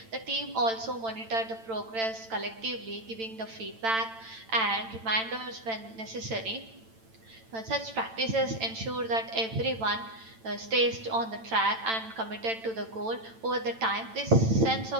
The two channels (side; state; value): left; late; 8.9 ms